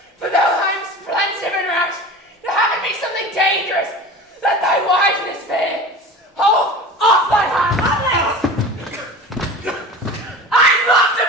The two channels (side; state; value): both; normal; correlation 0.35